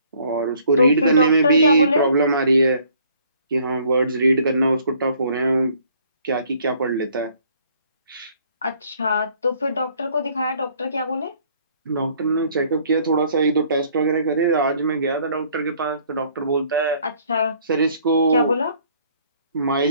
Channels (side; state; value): both; inverted; correlation -0.61